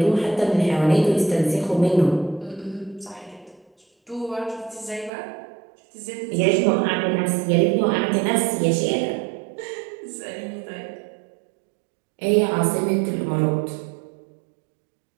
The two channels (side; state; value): left; drops out; at 5.1 s